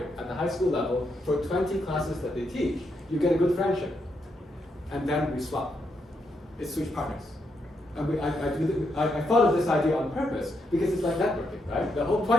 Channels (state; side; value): normal; both; correlation 0.80